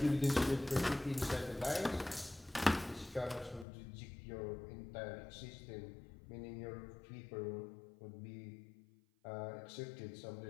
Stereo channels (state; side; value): drops out; right; at 3.7 s